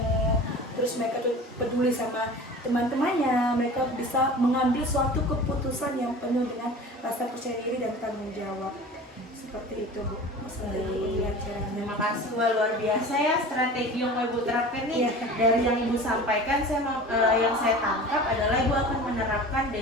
Terus mereka tuh peduli sama teman-temannya, mereka bisa mengambil suatu keputusan yang penuh dengan rasa percaya diri dan tanggung jawab. Seperti itu Bu. Terima kasih luar biasa ya strategi yang Ibu terapkan nih. Dari yang Ibu sampaikan, yang saya tangkap adalah Ibu akan menerapkan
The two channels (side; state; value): both; normal; correlation 0.38